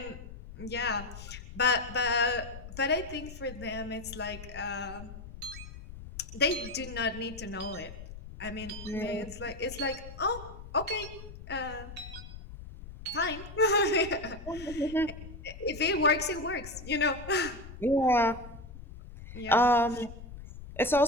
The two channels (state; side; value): noise; left; rumble, 13 dB below the sound